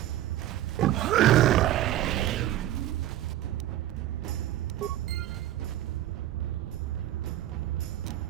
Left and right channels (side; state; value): left; quieter; 13.4 dB